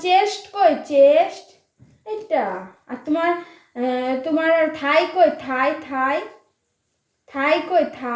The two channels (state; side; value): identical; both; correlation 1.00